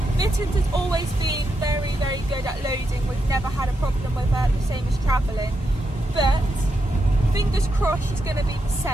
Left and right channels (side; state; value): both; normal; correlation 0.84